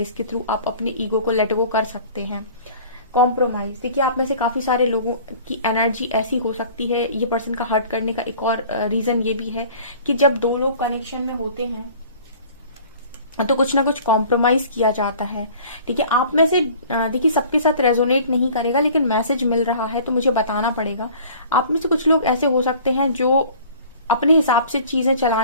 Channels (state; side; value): inverted; both; correlation -0.47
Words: के थ्रू आप अपने ईगो को लेट गो कर सकते हैं। कॉम्प्रोमाइज, देखिए आप में से काफी सारे लोगों की एनर्जी ऐसी हो सकती है। ये पर्सन का हर्ट करने का एक और रीजन ये भी है कि जब दो लोग कनेक्शन में होते हैं तो कुछ ना कुछ कॉम्प्रोमाइज किया जाता है। ठीक है, आप में से देखिए सबके साथ रेजोनेट नहीं करेगा, लेकिन मैसेज मिल रहा है तो मुझे बताना पड़ेगा। आप में से कुछ लोग ऐसे हो सकते हैं जो अपने हिसाब से चीजें